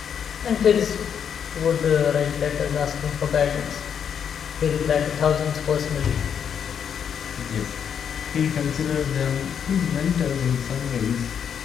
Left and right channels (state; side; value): quieter; right; 7.9 dB